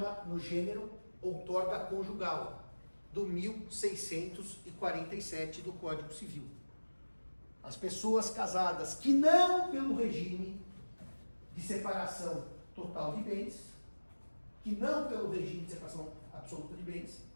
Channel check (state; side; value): inverted; both; correlation -1.00